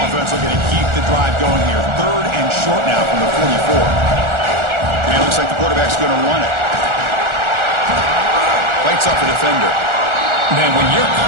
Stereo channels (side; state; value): left; late; 1.4 ms